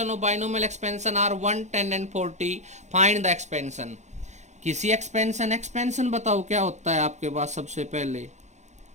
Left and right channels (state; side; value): late; left; 0.33 ms